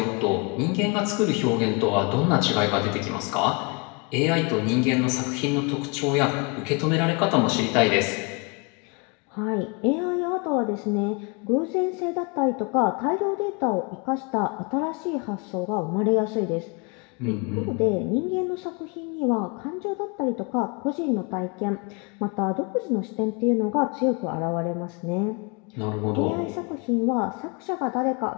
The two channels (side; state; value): right; quieter; 31.8 dB